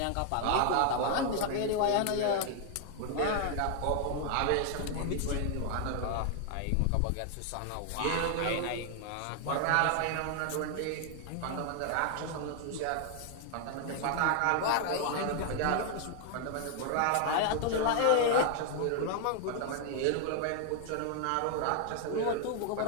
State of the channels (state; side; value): different; both; correlation 0.00